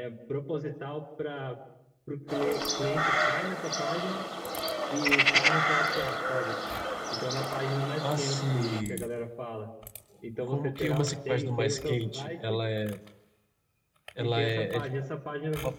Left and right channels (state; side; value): identical; both; correlation 1.00